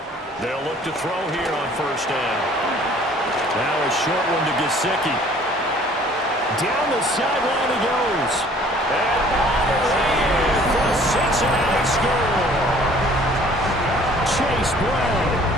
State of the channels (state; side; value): normal; both; correlation 0.54